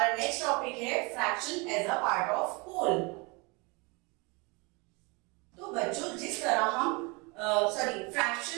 नेक्स्ट टॉपिक है fraction as a part of whole. तो बच्चों जिस तरह हम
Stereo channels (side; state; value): left; quieter; 28.6 dB